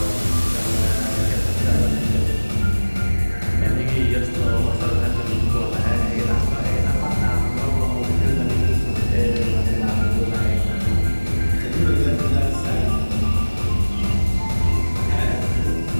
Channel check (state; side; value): inverted; both; correlation -1.00